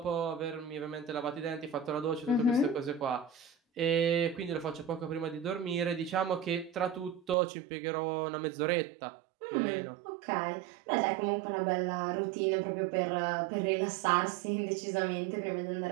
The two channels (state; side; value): drops out; left; at 7.4 s